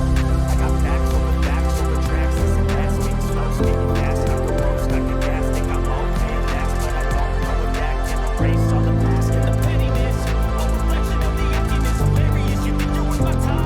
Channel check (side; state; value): both; identical; correlation 1.00